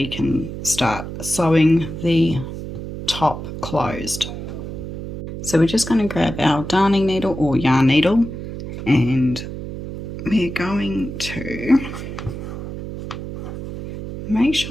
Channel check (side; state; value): right; noise; hum, 8 dB below the sound